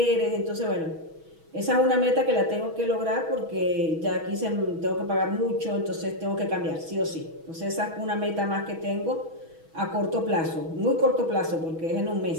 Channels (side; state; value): left; late; 6.2 ms